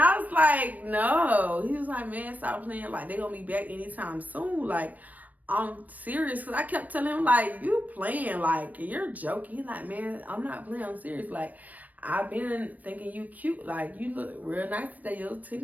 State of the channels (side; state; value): left; late; 0.077 ms